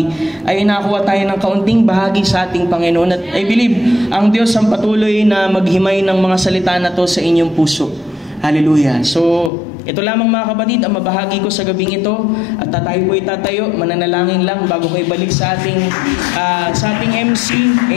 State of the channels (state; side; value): drops out; right; at 9.5 s